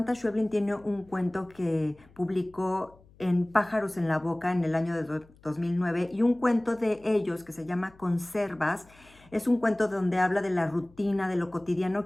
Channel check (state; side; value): noise; left; hum, 27 dB below the sound